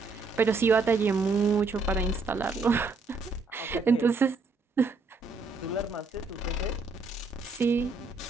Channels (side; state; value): left; quieter; 4.0 dB